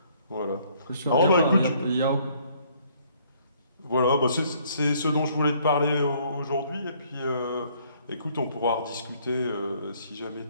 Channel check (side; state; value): both; inverted; correlation -0.63